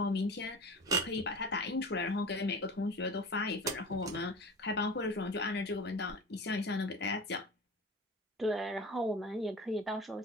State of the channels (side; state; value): both; normal; correlation 0.34